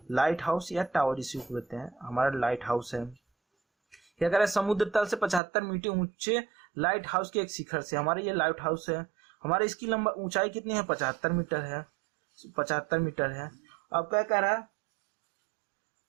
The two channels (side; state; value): left; drops out; at 5.4 s